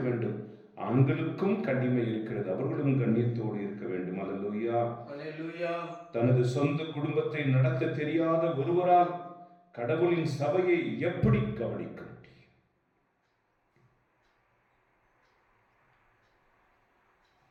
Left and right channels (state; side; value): identical; both; correlation 1.00